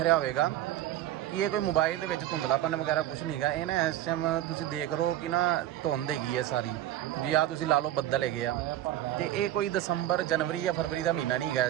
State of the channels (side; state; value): left; quieter; 13.3 dB